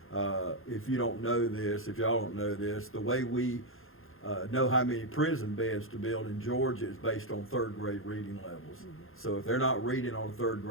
if you don't know this, if y'all don't know this, the way we know how many prison beds to build in Georgia is based on third grade reading levels. So if they're not reading on a third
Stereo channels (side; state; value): right; late; 0.60 ms